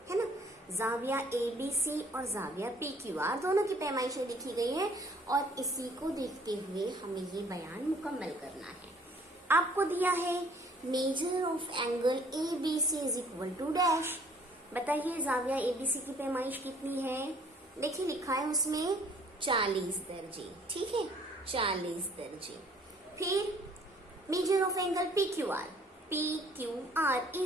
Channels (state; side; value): normal; both; correlation 0.58